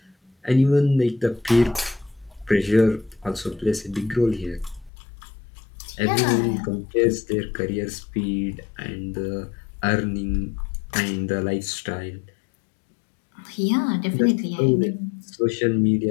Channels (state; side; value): drops out; right; at 4.9 s